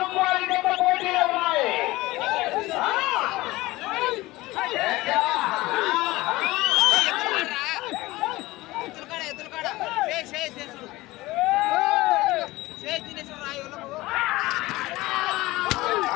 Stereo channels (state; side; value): quieter; right; 19.4 dB